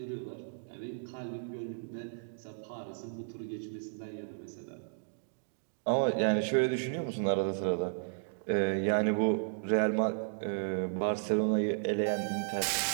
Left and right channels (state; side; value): silent; left; digital silence